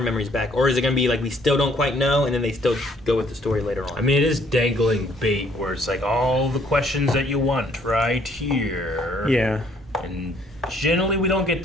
memories back? Or is it going to be like, we still don't quite know, and then they still go with the story later on? I mean, it is dangling bait where it's like all the questions that you want right here. Yeah. And generally we don't get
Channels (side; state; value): both; normal; correlation 0.64